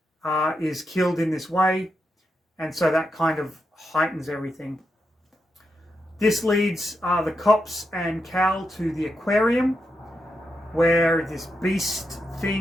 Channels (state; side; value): normal; both; correlation 0.85